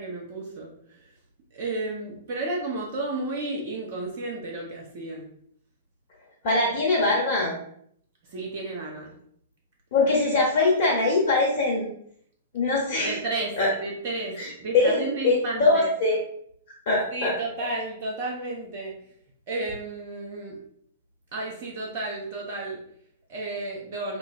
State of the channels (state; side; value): inverted; both; correlation -0.31